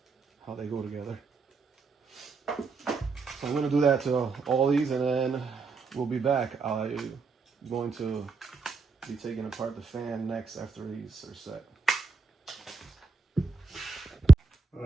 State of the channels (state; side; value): quieter; left; 4.2 dB